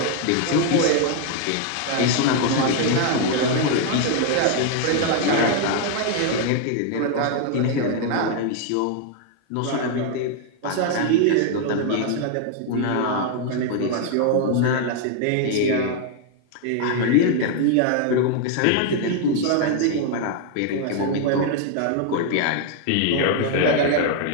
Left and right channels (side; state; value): both; different; correlation 0.00